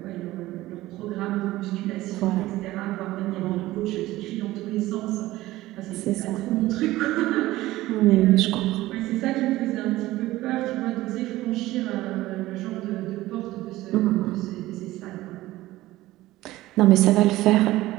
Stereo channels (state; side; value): quieter; left; 16.9 dB